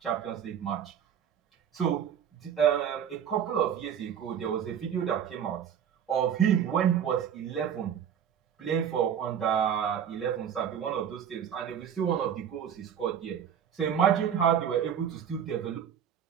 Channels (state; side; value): quieter; left; 8.5 dB